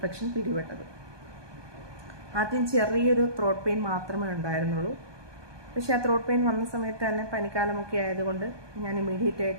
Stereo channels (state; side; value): late; left; 1.2 ms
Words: പിടിപെട്ടത്. ആദ്യം ചെറിയൊരു ത്രോട്ട് പെയിൻ മാത്രമേ ഉണ്ടായിരുന്നുള്ളൂ. പക്ഷേ ആ ത്രോട്ട് പെയിൻ വന്ന സമയത്ത് തന്നെ പനിക്കാലമൊക്കെ ആയതുകൊണ്ട് ഞാൻ ഇമ്മീഡിയറ്റ്